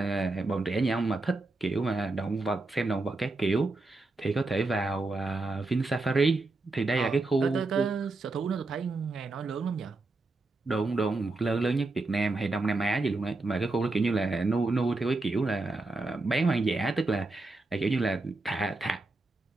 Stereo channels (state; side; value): quieter; left; 3.3 dB